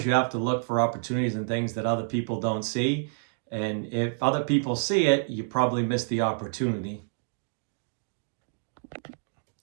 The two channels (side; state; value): left; silent; digital silence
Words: you have to look for opportunities and things that other people don't see. And if other people see it, you probably miss the opportunity.